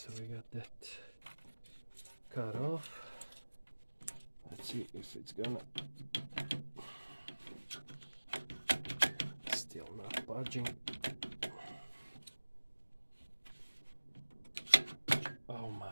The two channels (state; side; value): inverted; both; correlation -1.00